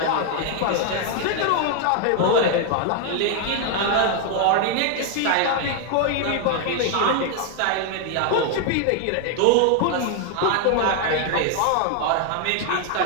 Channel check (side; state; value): both; different; correlation 0.00